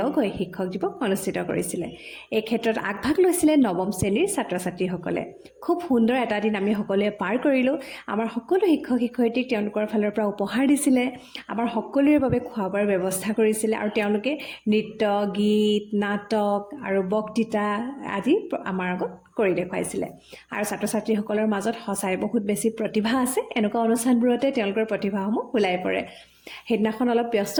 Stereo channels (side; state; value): both; identical; correlation 1.00